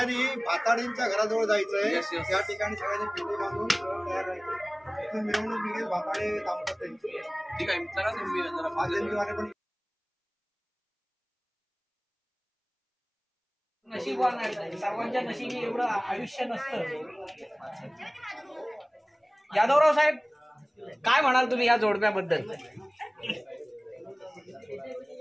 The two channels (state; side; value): identical; both; correlation 1.00